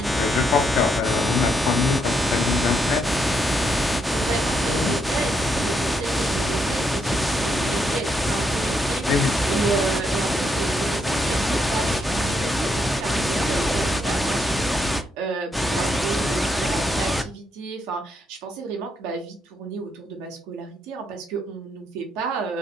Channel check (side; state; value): both; normal; correlation 0.77